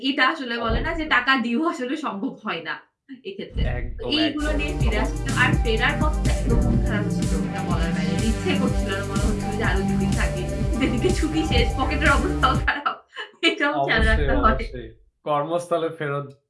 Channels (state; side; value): identical; both; correlation 1.00